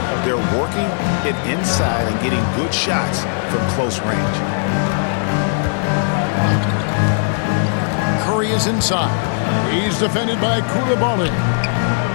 They're working it inside and getting good shots from close range. Curry is inside. He's defended by Koulibaly.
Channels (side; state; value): right; silent; 67 dB below the other